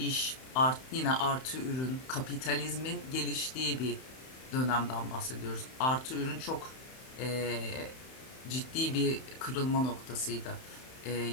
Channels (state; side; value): late; right; 31 ms